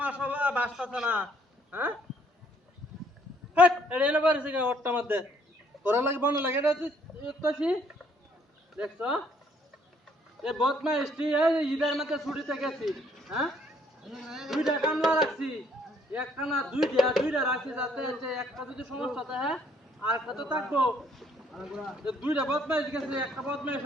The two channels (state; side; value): normal; both; correlation 0.65